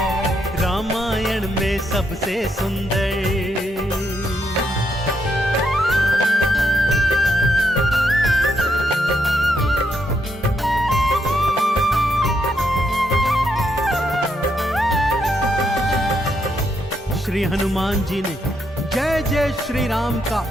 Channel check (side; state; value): both; normal; correlation 0.78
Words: रामायण में सबसे सुंदर। श्री हनुमान जी ने जय जय श्री राम का